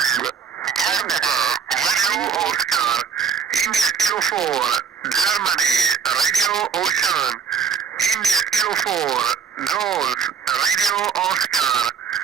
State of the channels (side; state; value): left; quieter; 6.7 dB